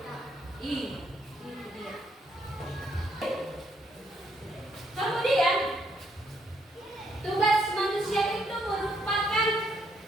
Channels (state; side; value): normal; both; correlation 0.73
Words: Itu dia. Kemudian tugas manusia itu merupakan